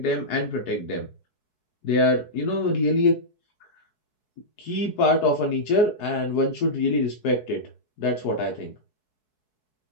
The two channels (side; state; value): right; late; 4.7 ms